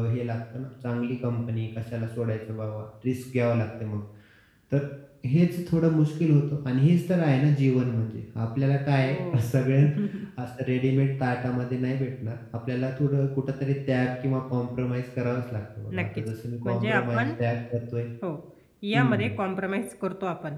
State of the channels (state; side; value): identical; both; correlation 1.00